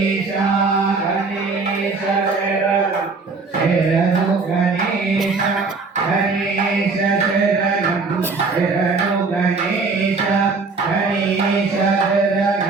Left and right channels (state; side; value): quieter; left; 4.2 dB